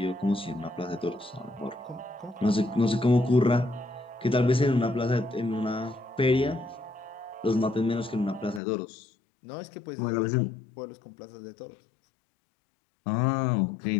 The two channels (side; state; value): right; drops out; at 8.6 s